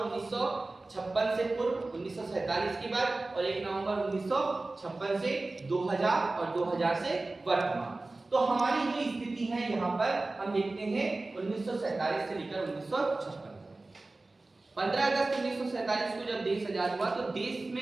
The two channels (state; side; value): quieter; left; 3.2 dB